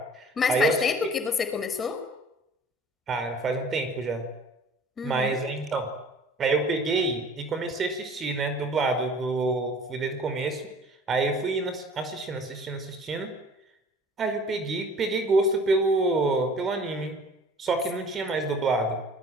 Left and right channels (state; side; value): normal; both; correlation 0.48